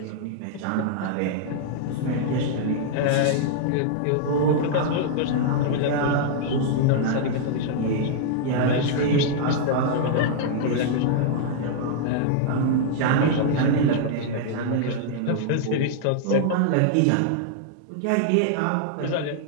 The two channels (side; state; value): both; different; correlation -0.01